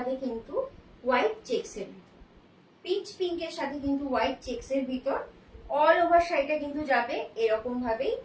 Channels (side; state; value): both; identical; correlation 1.00